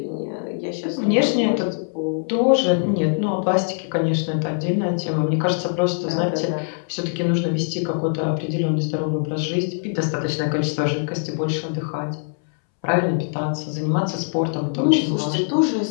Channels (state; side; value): silent; right; 64 dB below the other